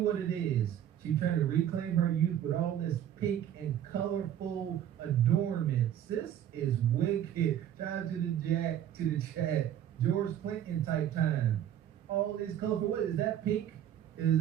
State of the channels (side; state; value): left; quieter; 10.5 dB